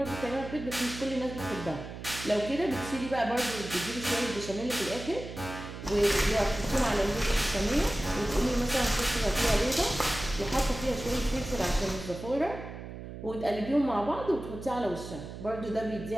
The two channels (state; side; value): noise; right; hum, 10 dB below the sound